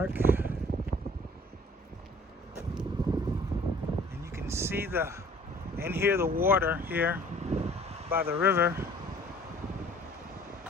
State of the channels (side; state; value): both; normal; correlation 0.53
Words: And you can see and hear the water here by the river.